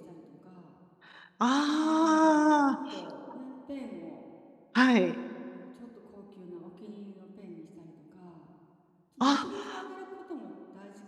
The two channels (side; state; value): both; identical; correlation 1.00